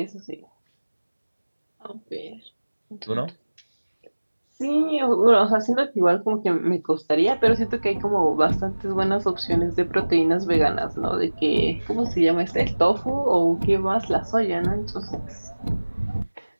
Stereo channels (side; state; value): both; inverted; correlation -1.00